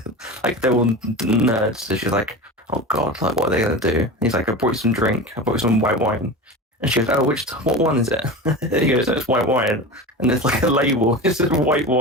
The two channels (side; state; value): both; normal; correlation 0.28